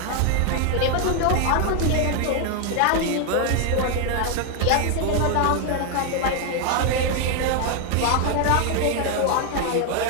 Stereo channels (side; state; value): both; different; correlation 0.00